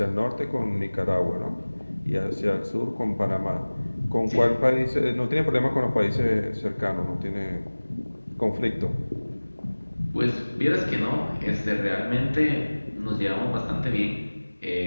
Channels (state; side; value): inverted; both; correlation -1.00